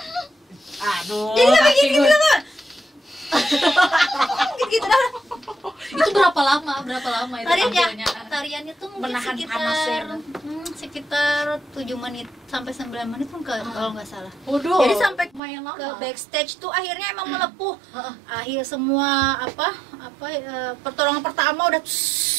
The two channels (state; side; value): drops out; left; at 15.4 s